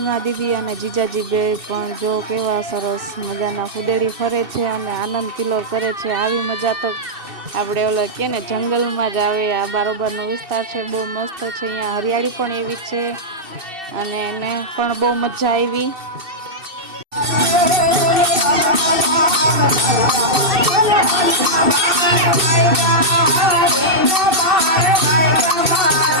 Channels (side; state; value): left; late; 2.7 ms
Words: દીદી અને જીજાજી બે પણ જો કેવા સરસ મજાના ફુદેડી ફરે છે અને આનંદ કિલ્લોર કરે છે. આવી મજા તો આપણે ઓલો કે ને જંગલમાં જ આવે. આ બારોબારનો વિસ્તાર છે, બહુ મસ્ત છે. અહીંયા હરિયાળી પણ એવી છે અને એને પણ બહુ મજા આવી.